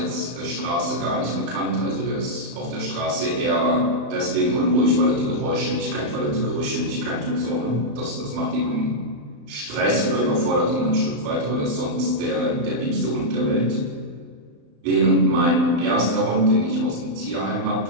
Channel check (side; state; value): left; late; 35 ms